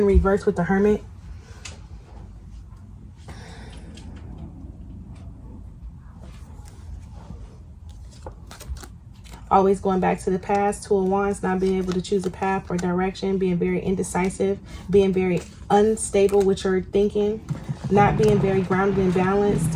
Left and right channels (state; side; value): identical; both; correlation 1.00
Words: reverse with the Hermit. Always going back to the past. 2 of Wands, not being able to choose a path or direction, being very indecisive, being very unstable with your thinking, not being very grounded and balanced